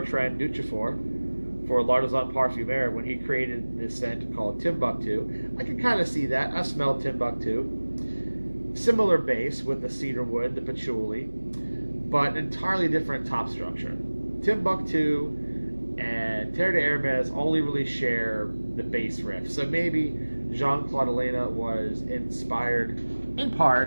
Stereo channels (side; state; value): both; inverted; correlation -1.00